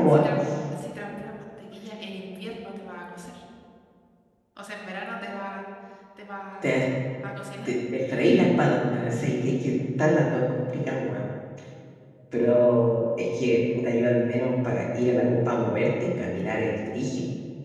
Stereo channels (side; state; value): both; identical; correlation 1.00